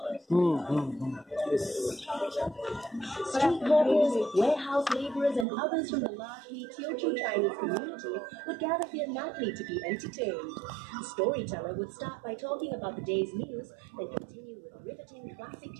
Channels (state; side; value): drops out; left; at 5.5 s